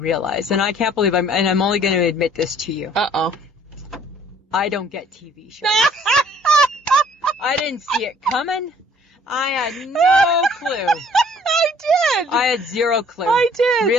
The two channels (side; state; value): both; normal; correlation 0.57